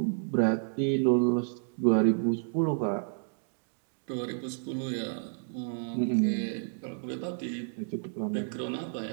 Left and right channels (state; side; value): silent; left; digital silence